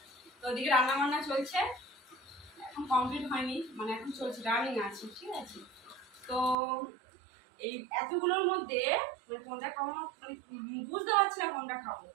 তো ওদিকে রান্না বান্না চলছে, এখন কমপ্লিট হয়নি, মানে এখন চলছে, রানিং আছে, ঠিক আছে। তো এই এতগুলোর মধ্যে মানে কোনটা খাবো মানে বুঝতে পারছি না কোনটা খাবো,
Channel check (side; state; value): left; drops out; at 6.6 s